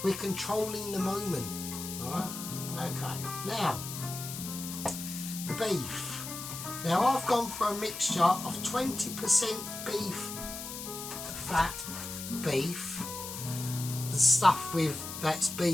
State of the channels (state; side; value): noise; left; hiss, 8 dB below the sound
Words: We're controlling the moment. Alright? Okay. Now, the beef. Now, I've gone for a mixture of 20% beef fat beef. The stuff that's